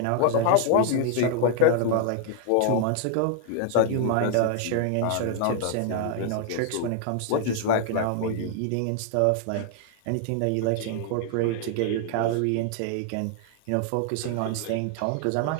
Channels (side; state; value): both; different; correlation 0.00